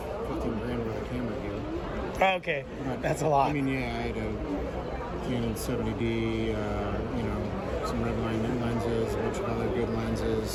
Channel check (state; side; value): identical; both; correlation 1.00